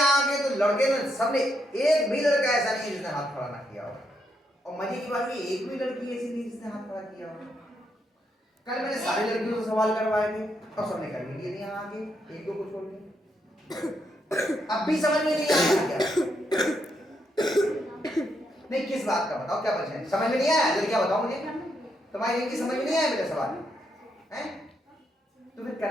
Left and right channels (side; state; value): both; normal; correlation 0.79